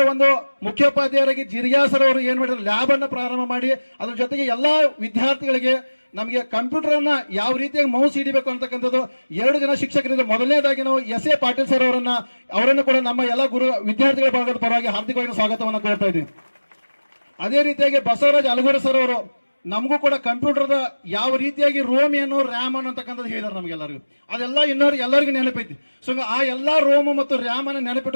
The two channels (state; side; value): inverted; both; correlation -1.00